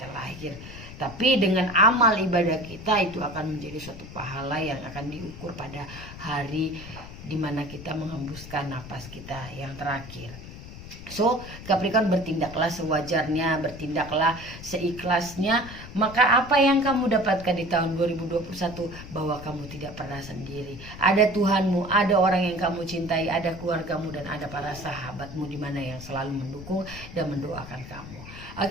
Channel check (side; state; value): left; noise; rumble, 13 dB below the sound